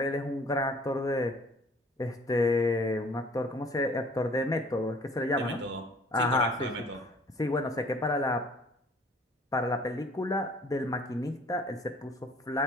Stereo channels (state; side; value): normal; both; correlation 0.54